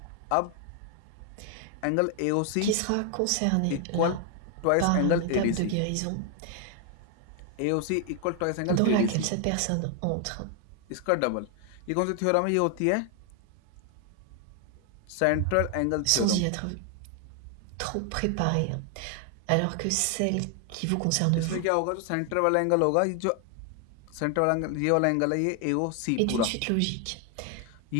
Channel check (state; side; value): different; both; correlation 0.00